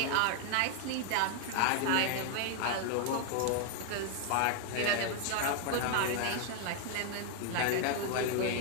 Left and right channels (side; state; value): both; different; correlation 0.00